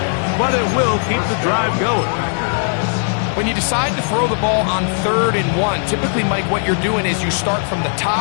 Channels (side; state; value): right; silent; digital silence